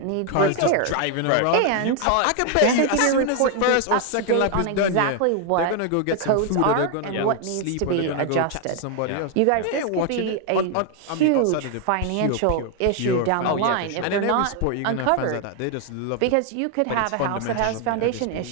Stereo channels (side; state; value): both; different; correlation 0.00